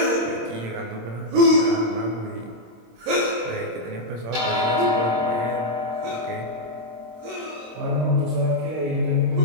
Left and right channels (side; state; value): left; late; 26 ms